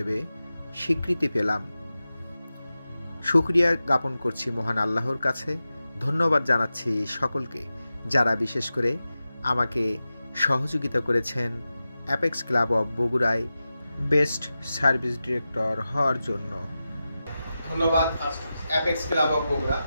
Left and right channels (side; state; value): both; inverted; correlation -0.93